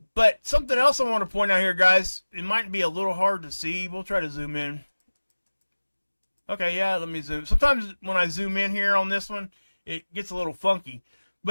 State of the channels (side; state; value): both; inverted; correlation -1.00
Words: something else I want to point out here, guys. It might be a little hard to see. We'll try to zoom in. Okay, yeah, let me zoom. Sometimes when I zoom in here on this one, it gets a little funky.